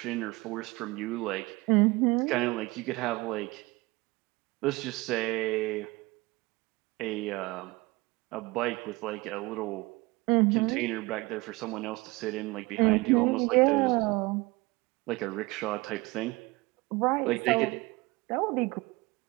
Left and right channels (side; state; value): left; quieter; 23.0 dB